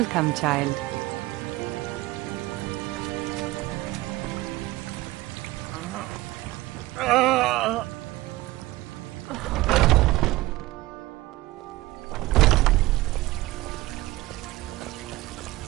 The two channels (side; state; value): left; quieter; 18.5 dB